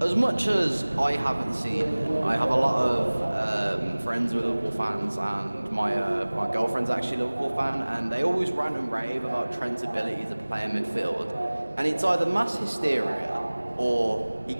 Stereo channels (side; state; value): both; inverted; correlation -1.00